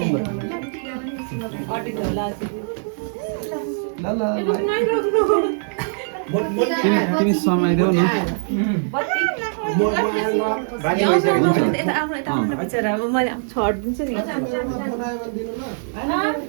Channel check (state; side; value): silent; left; digital silence